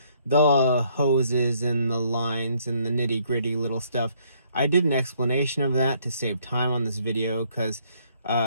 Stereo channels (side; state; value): both; inverted; correlation -0.66